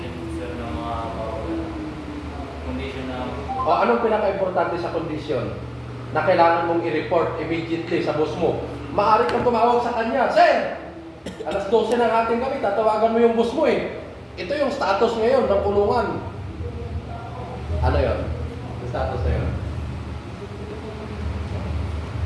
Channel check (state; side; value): identical; both; correlation 1.00